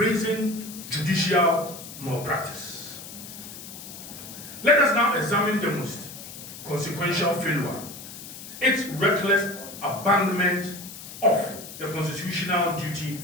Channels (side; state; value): left; noise; hiss, 13 dB below the sound